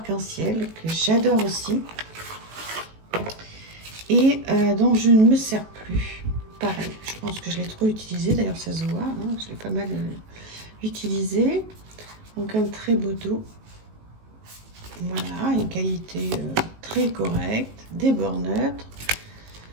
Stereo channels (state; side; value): late; left; 19 ms